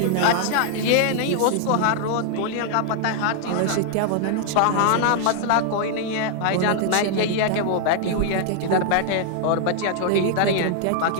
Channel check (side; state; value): both; different; correlation 0.00